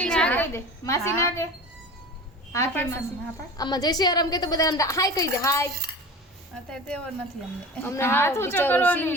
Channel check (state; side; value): normal; both; correlation 0.35